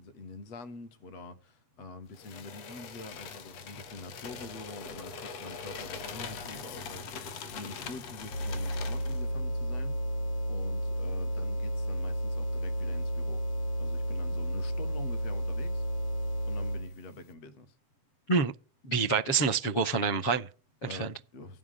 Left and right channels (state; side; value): late; right; 7.3 ms